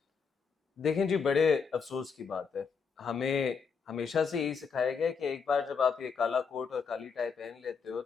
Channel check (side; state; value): right; quieter; 5.8 dB